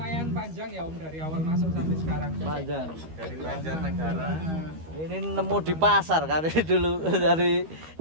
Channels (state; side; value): late; left; 13 ms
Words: panjang ya Om dari awal masuk sampai sekarang. Panjang. Dari Banjarnegara. Ini nemu di pasar kan dulu dari